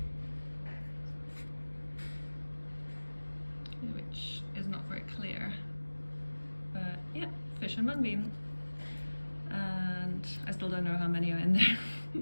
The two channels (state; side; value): inverted; both; correlation -1.00